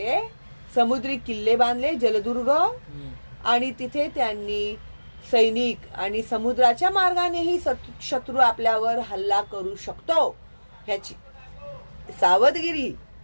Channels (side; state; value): both; inverted; correlation -1.00